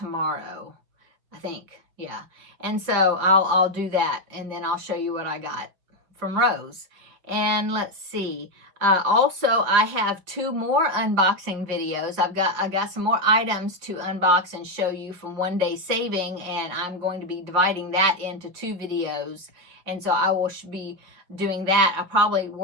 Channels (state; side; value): late; left; 5.6 ms